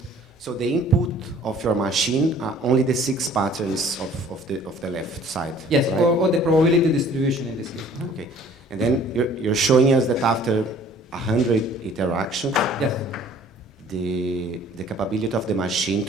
So the input of your machine are only the 6 patterns of the left side. Yes, right? or the probability distribution in this case. Okay, and then you're showing us that after 100 interactions, Yes. the capability of the machine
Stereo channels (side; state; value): both; normal; correlation 0.53